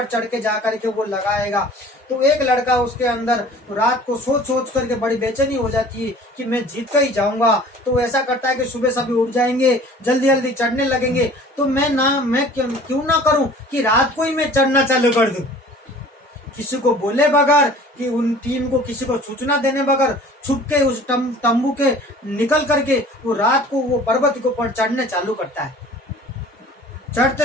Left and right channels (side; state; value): both; normal; correlation 0.47